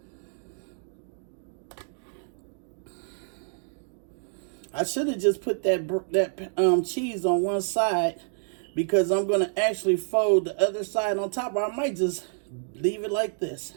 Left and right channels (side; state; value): left; silent; digital silence